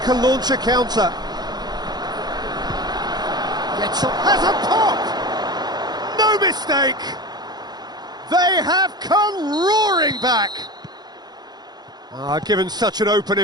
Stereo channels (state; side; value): late; left; 0.20 ms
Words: launch a counter. Gets up, has a pop! No mistake! They have come roaring back! Given such an open